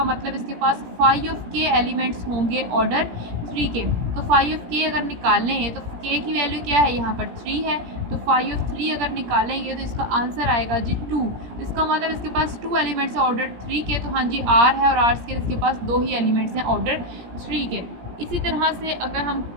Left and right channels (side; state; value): left; late; 17 ms